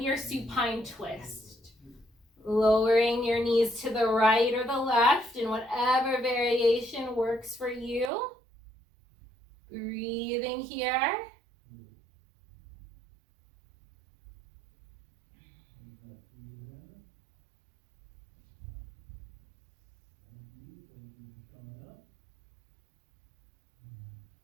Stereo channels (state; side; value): drops out; left; at 8.1 s